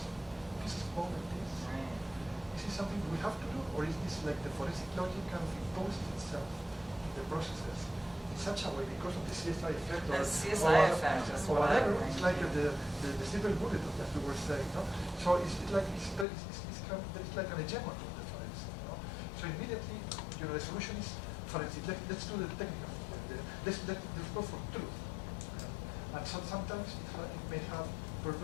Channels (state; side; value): drops out; right; at 16.2 s